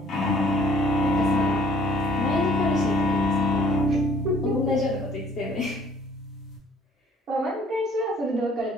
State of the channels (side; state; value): both; normal; correlation 0.57